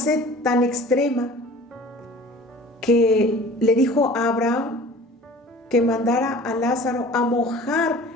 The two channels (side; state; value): both; normal; correlation 0.44